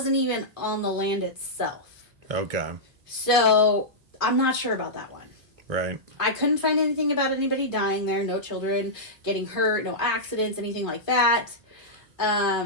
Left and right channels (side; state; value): both; normal; correlation -0.11